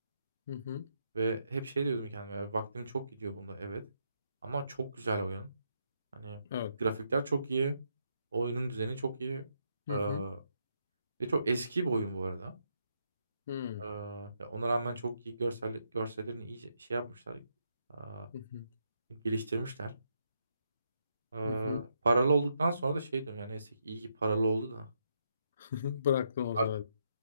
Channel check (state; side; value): inverted; both; correlation -0.78